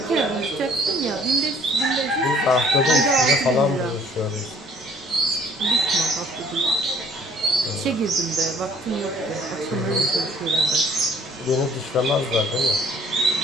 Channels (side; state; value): both; normal; correlation 0.56